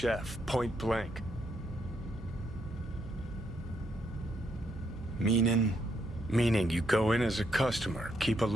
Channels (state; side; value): noise; right; hum, 14 dB below the sound